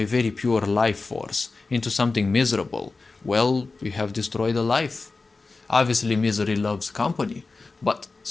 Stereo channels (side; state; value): right; quieter; 3.8 dB